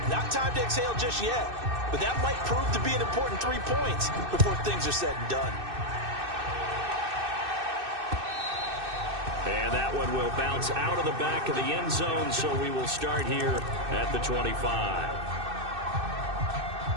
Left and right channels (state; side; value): late; left; 2.6 ms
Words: Not time to exhale just yet, but that might prove to be an important 3 points before things are said and done. And that one will bounce out of the back of the end zone, so we will start here at the 25.